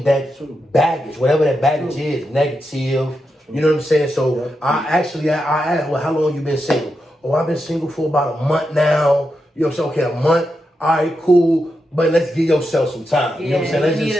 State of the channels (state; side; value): normal; both; correlation 0.86